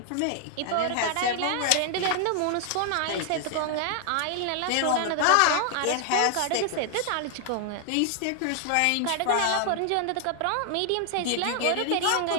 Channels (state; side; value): different; both; correlation 0.00